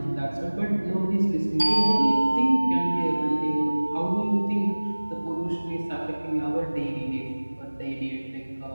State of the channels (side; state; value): both; inverted; correlation -1.00